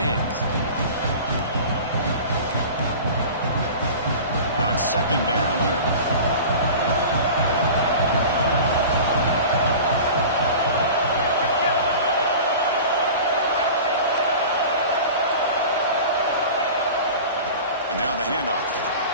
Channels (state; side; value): inverted; both; correlation -0.37